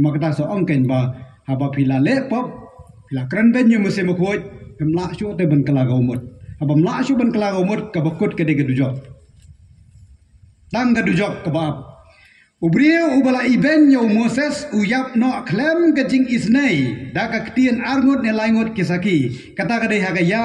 ma kata so ong ken ba haba pila le pop pila kren ben yu muse mo khoj mla shu te ban kala ga umut haba mla shu ban kala ga umut ka bakut ka de ka dujok tang ka dujok ka ba Ubrio ubala iben yo Moses uyap no klem kajing isnai da ka ketien arngut ne laingut kisaki kata kadai haga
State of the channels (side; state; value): both; identical; correlation 1.00